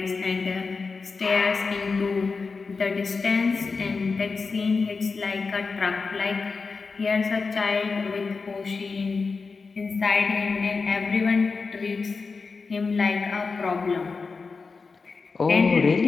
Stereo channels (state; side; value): quieter; right; 4.5 dB